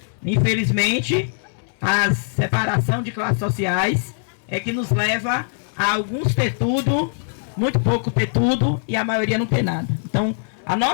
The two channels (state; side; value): silent; right; 65 dB below the other